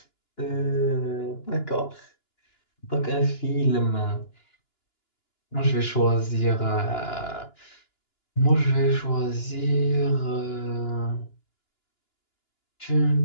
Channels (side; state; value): right; late; 2.9 ms